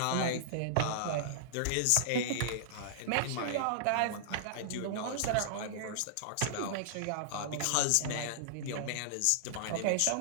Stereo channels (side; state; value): both; different; correlation -0.01